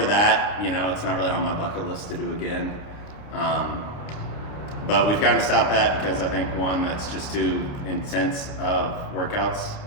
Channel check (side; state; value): right; late; 29 ms